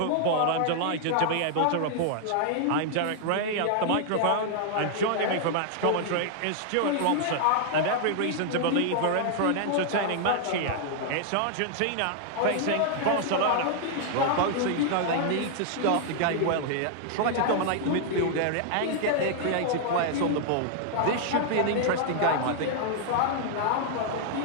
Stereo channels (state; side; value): different; both; correlation -0.01